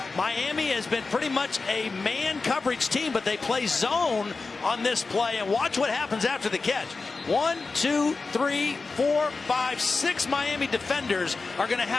Miami has been pretty much a man coverage team, but they play zone on this play. And watch what happens after the catch. 1, 2, 3, 4, 5, 6 Miami defenders are going to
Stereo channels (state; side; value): quieter; right; 4.1 dB